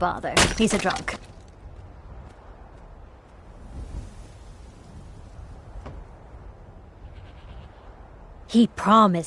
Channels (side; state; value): both; identical; correlation 1.00